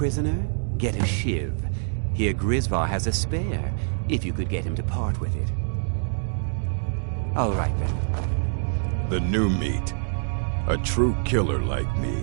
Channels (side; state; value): left; silent; digital silence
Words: Get a shiv. Here Grisvar has a spare, if you could get him to part with it. All right, then. The new meat. A true killer like